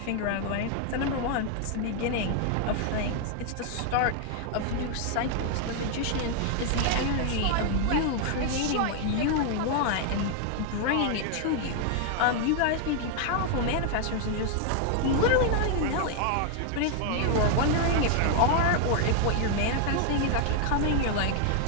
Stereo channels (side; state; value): both; different; correlation 0.00